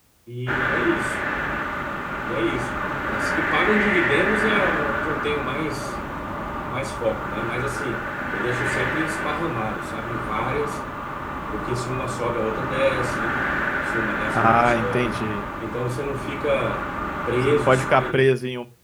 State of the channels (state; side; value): identical; both; correlation 1.00